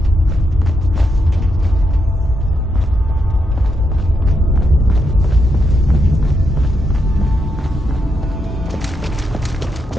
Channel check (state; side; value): normal; both; correlation 0.81